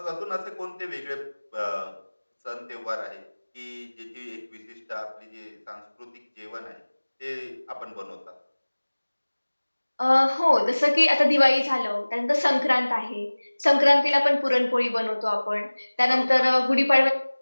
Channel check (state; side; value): inverted; both; correlation -1.00